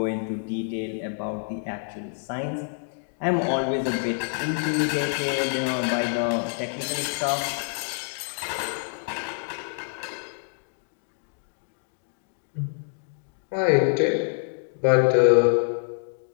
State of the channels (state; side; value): silent; right; 60 dB below the other